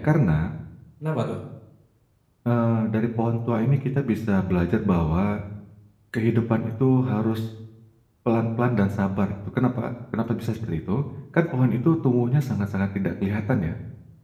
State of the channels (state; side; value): identical; both; correlation 1.00